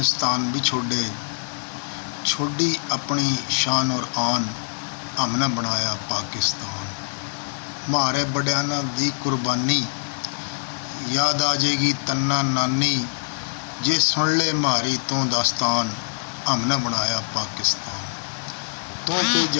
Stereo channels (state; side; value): silent; right; digital silence